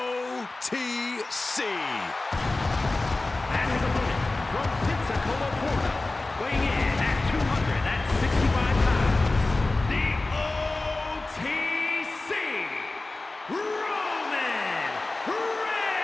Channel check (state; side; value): quieter; right; 3.1 dB